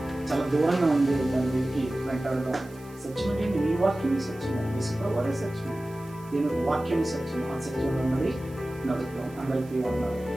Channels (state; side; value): noise; right; hiss, 25 dB below the sound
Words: చాలా దూరంగా ఉంది, దాన్ని వెతికి వెంటాడదాం. సత్యం ఏంటి? నీ వాక్యం సత్యం, యేసుప్రభువు వారే సత్యం, దీని వాక్యం సత్యం. ఆ సత్యంలో ఉన్నది నడుపుతాం. అందరికీ ఉన్నారు.